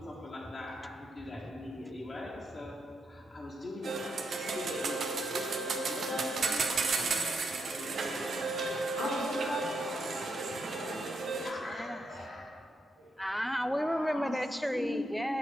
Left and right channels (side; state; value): both; normal; correlation 0.81